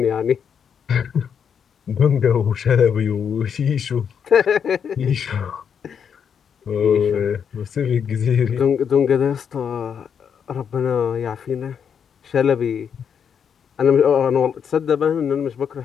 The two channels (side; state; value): right; quieter; 7.5 dB